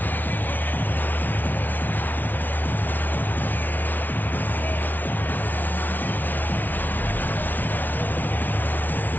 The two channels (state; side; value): late; right; 0.085 ms